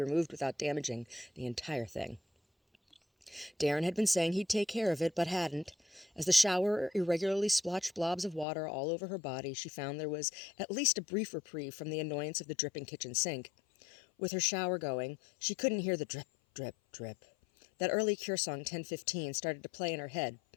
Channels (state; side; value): drops out; right; at 8.5 s